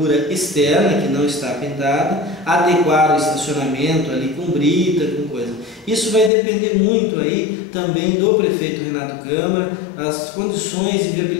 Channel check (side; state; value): right; drops out; at 6.3 s